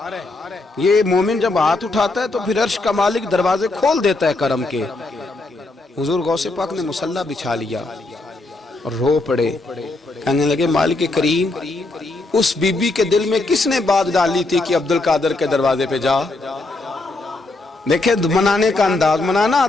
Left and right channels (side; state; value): right; quieter; 3.1 dB